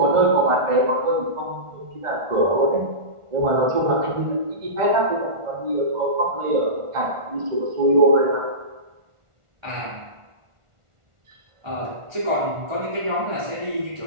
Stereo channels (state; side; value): late; left; 1.4 ms